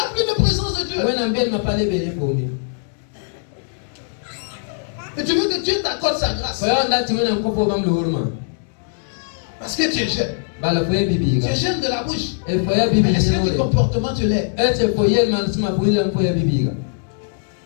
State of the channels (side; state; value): right; silent; 65 dB below the other